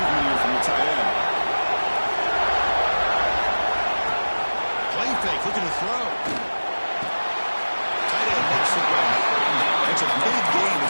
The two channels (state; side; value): inverted; both; correlation -1.00